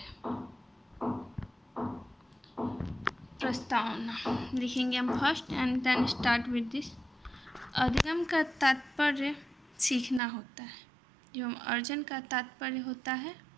प्रस्तावना लिखेंगे हम first and then start with this. अधिगम का तात्पर्य सीखना होता है, एवं अर्जन का तात्पर्य होता है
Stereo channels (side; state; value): left; drops out; at 10.2 s